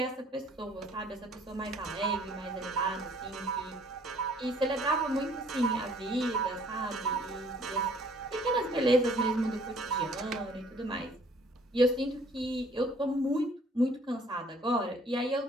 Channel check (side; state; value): both; normal; correlation 0.58